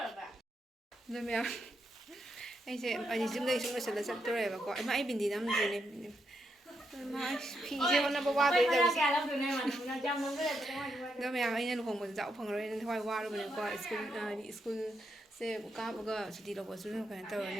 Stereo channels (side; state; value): both; normal; correlation 0.81